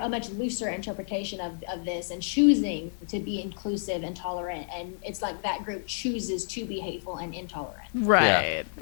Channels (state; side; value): silent; right; digital silence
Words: interpretation of this and choosing to be inclusive and tolerant. And it's like that group chooses to be hateful and intolerant. Yeah. Right.